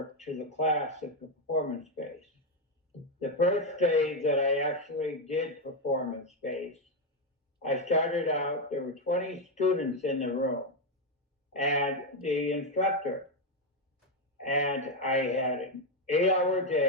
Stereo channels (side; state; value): both; normal; correlation 0.05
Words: to the class at performance-based. The first day that I actually did performance-based, I started out, there were 20 students in the room and the instructor. And I had an 8-hour